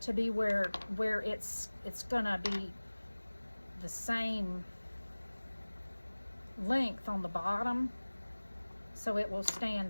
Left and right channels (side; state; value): both; inverted; correlation -1.00